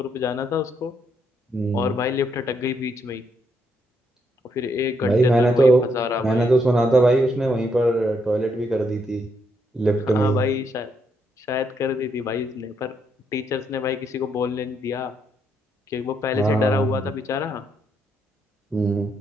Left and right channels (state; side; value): normal; both; correlation 0.76